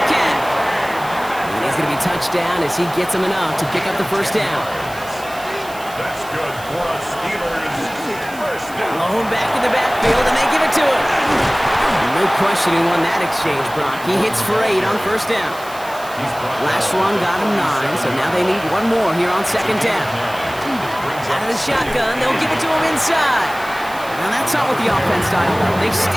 And he's going to be touchdown as he gets him enough to pick up the first down. That's good for us Steelers. Blown back in the backfield, and they give it to him. No question he won that exchange, Brock. He hits for 8 on first down. Last run got him 9, so now they need one more here on second down. Out of the shotgun, they'll give it to him inside. Now that's not what the offense style does. They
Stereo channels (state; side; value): noise; right; hiss, 18 dB below the sound